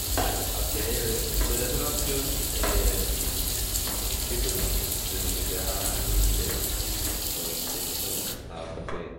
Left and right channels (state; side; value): identical; both; correlation 1.00